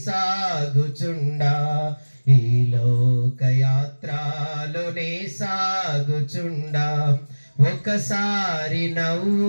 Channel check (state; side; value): inverted; both; correlation -1.00